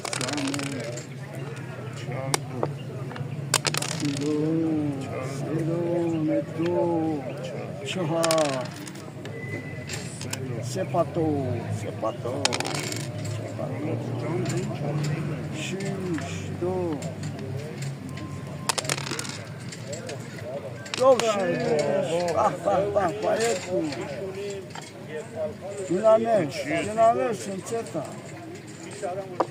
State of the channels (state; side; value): identical; both; correlation 1.00